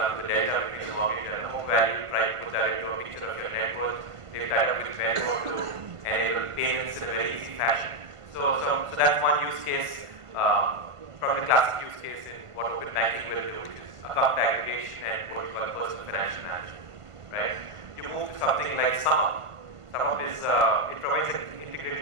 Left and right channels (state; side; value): late; left; 1.5 ms